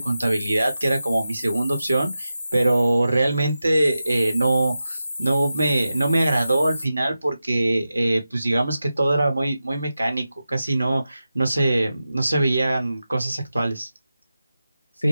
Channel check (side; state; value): both; inverted; correlation -0.92